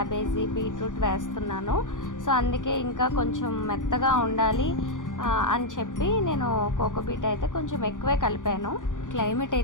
బీట్రూట్ వేస్తున్నాను. సో అందుకే ఇంకా కొంచెం మెత్తగా ఉండాలి అని చెప్పి నేను కోకోబీట్ అయితే కొంచెం ఎక్కువే కలిపాను. క్లైమేట్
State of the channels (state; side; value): late; right; 0.88 ms